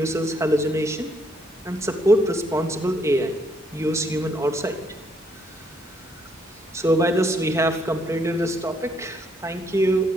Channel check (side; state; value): both; normal; correlation 0.71